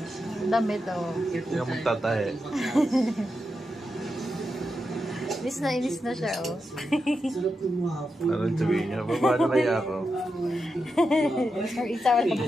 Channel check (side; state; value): both; normal; correlation 0.87